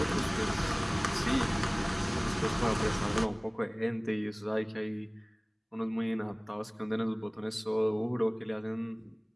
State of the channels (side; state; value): both; identical; correlation 1.00